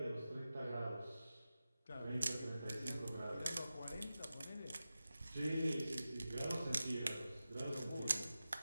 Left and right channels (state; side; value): inverted; both; correlation -0.93